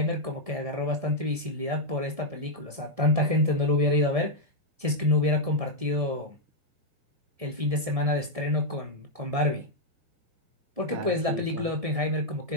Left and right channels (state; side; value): late; left; 1.7 ms